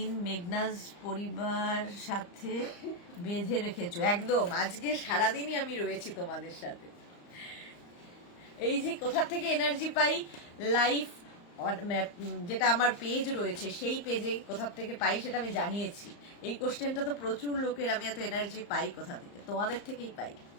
মেঘনাজ পরিবার সাথে বেঁধে রেখেছো। একদম, আজকে সারাদিনই আমি রয়েছি তোমাদের সাথে। এই যে কোথা থেকে এনার্জি পাই, লাইফ যেটা আমার পেজ রয়েছে সেই পেজে কোথা থেকে পাই সেটা আমি জানিয়েছি। এই কোশ্চেনটা তো প্রচুর লোকের, আমি এত এনার্জি পাই কোথা থেকে? তোমাদের থেকেই পাই।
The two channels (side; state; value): right; late; 35 ms